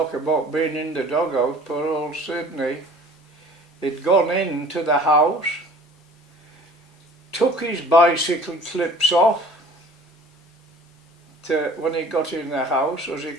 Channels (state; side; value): normal; both; correlation 0.48